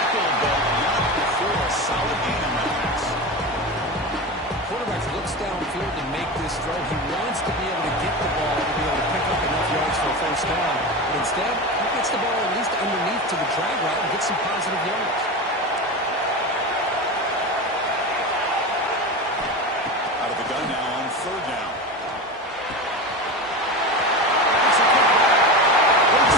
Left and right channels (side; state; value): both; normal; correlation 0.24